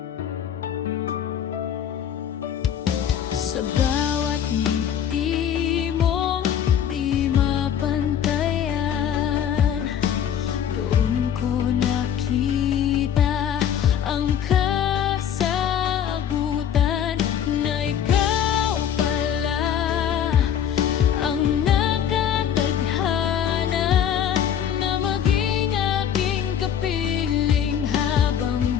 Sa bawat ngiti mong di mapantayan, doon ko nakita ang kasagutan na ikaw pala ang nakatadhana na maging aking kapiling habang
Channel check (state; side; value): quieter; right; 9.2 dB